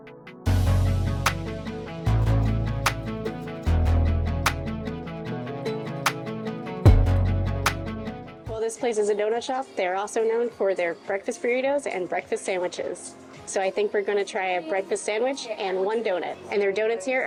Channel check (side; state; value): both; identical; correlation 1.00